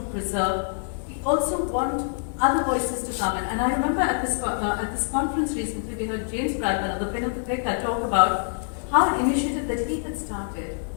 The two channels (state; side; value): silent; right; 61 dB below the other